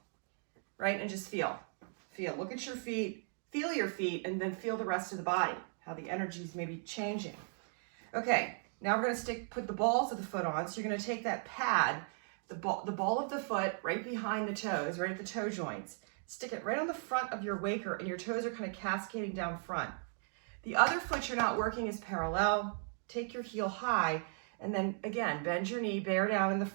right? And just feel. Look at your feet, feel your feet, and then feel the rest of the body, how the energy is maybe changing. Okay, now we're gonna put the balls of the foot on. So you're gonna take that pad, the ball of the foot right behind the toes, right at the toe joints. Stick it right on the front of your waker, and your toes are kind of cascading down front. The other foot you're not working is parallel. Take your heel high, and then again, bend your knee, bear down in the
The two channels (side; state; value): left; silent; 53 dB below the other